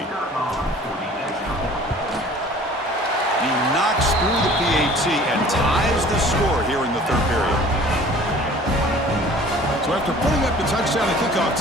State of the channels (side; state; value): both; normal; correlation 0.48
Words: knocks through the PAT and ties the score here in the 3rd period. So after putting up the touchdown, the kickoff